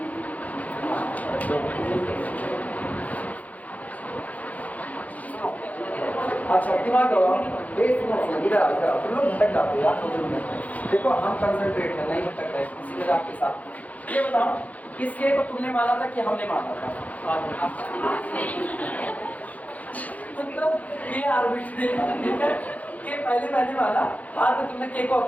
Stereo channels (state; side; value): late; right; 0.073 ms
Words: अच्छा दिमाग लगाओ, इधर आओ इधर आओ, तुम लोग भटक जाते हो यार 2 मिनट। देखो हम कंसंट्रेट है, नहीं भटक रहे किसी जगह आपके साथ। ये बताओ इस के को तुमने माना था कि हमने माना था? मतलब ये आर्बिट्रेरी के पहले मैंने माना, बाद में तुमने के को